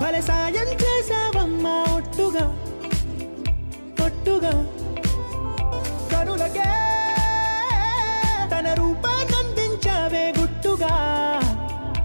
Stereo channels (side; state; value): both; inverted; correlation -1.00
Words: భలే సాయం చేసావమ్మా ఒట్టుగా ఒట్టుగా కనులకే తన రూపాన్నందించావే గుట్టుగా.